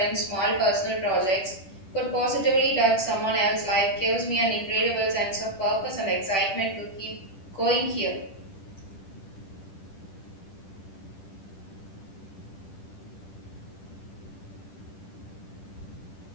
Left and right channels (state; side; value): late; right; 10 ms